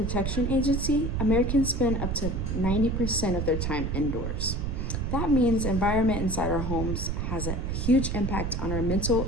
Agency, Americans spend up to 90% of their time indoors. That means environment inside our homes has a huge impact on our mental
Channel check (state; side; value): noise; right; rumble, 1 dB below the sound